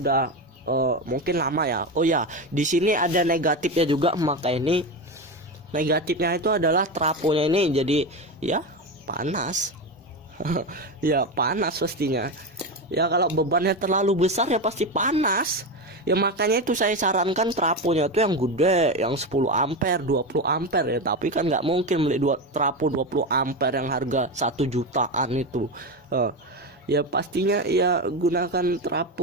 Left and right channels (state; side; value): normal; both; correlation 0.17